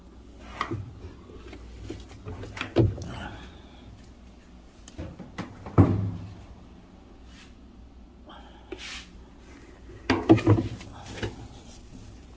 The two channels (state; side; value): identical; both; correlation 1.00